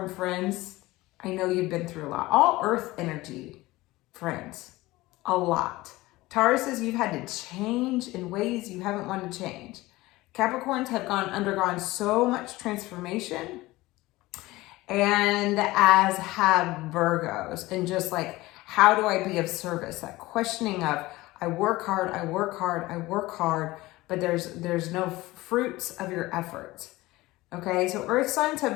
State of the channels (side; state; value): right; quieter; 19.2 dB